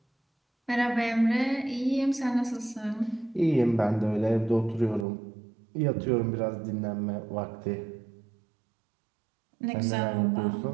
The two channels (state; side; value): drops out; left; at 5.1 s